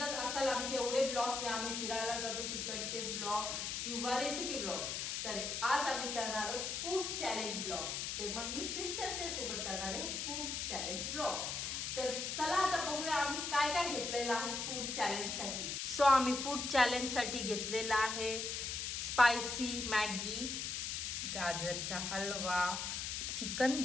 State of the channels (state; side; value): noise; left; hiss, 2 dB below the sound